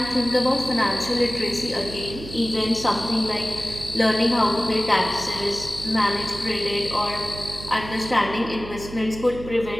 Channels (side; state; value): right; noise; hum, 12 dB below the sound